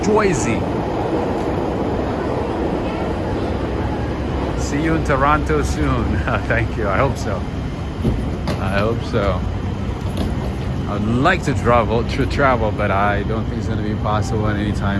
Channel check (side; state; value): both; identical; correlation 1.00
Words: Jersey. See you in Toronto soon. Thank you. I hope so. I'd like to travel, but I don't think it's going to be possible